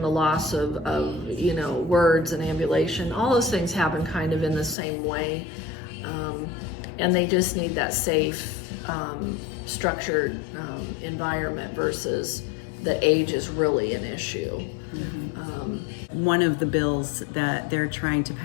loss of you know, words and ambulation, all those things happen kind of in the same way. And they just need that safe, structured environment versus that age is really an issue. One of the bills that they're trying to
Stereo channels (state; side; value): drops out; right; at 4.8 s